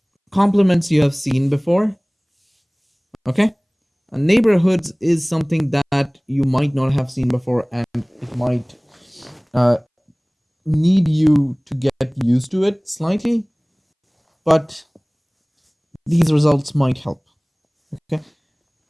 Complements you have seen before. Okay. Neighborhoods is something that you might not have seen before, and it might need you to get used to it slightly, but these results might help. Okay.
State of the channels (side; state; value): both; identical; correlation 1.00